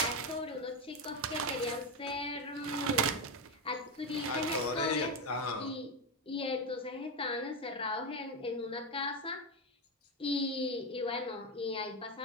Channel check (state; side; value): normal; both; correlation 0.11